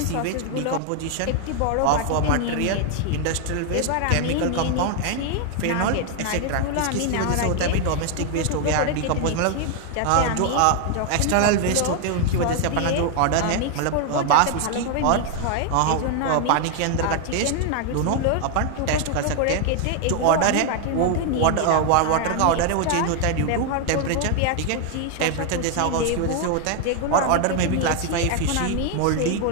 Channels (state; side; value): different; both; correlation 0.00